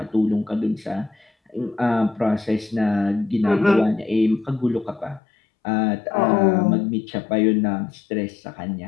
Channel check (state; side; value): drops out; right; at 5.2 s